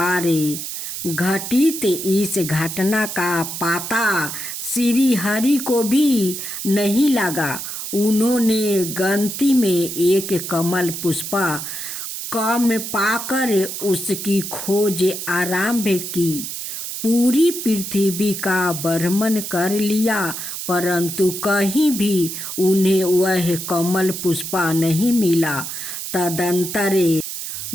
घटित इस घटना का पता श्री हरि को भी नहीं लगा। उन्होंने गलती में एक कमल पुष्प कम पाकर उसकी खोज आरंभ की। पूरी पृथ्वी का भ्रमण कर लिया, परंतु कहीं भी उन्हें वह कमल पुष्प नहीं मिला। तदंतर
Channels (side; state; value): right; noise; hiss, 6 dB below the sound